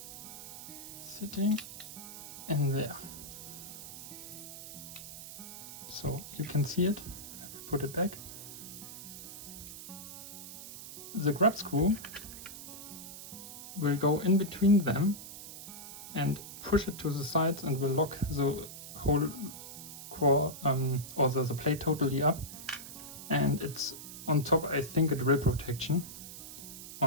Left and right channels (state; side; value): noise; right; hiss, 11 dB below the sound